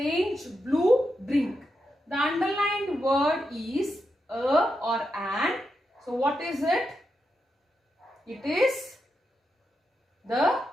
blue drink. The underlined word is a or an. So what is it? It is the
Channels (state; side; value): normal; both; correlation 0.86